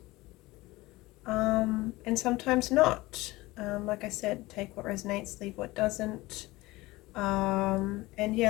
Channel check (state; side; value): quieter; right; 20.1 dB